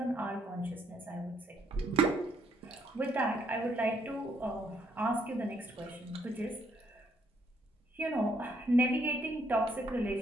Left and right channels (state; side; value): normal; both; correlation 0.71